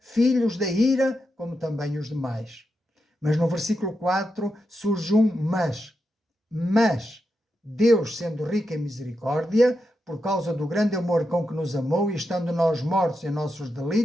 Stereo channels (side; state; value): both; normal; correlation 0.86